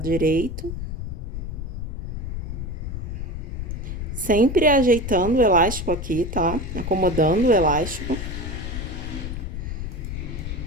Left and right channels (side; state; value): left; noise; rumble, 5 dB below the sound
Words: direito. Sempre ajeitando o elástico aqui, tá? Acomodando o elástico.